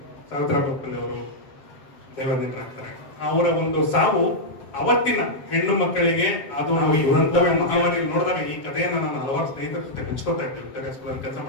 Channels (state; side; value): late; right; 7.2 ms